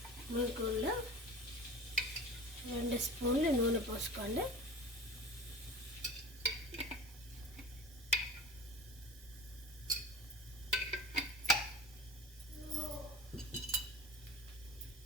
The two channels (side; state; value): both; normal; correlation 0.36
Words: మూకుల్లో 2 స్పూన్లు నూనె పోసుకోండి.